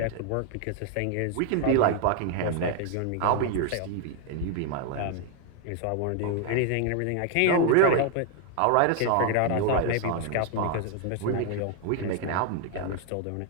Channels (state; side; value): different; both; correlation 0.00